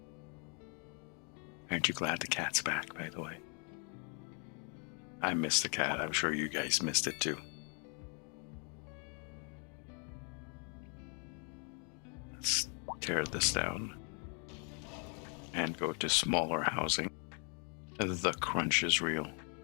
Aren't you glad the cat's back, by the way? I missed the cat. I'm sure you guys missed it too. Let's tear this down and go to smaller housing. The crunch is real.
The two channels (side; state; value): right; quieter; 39.3 dB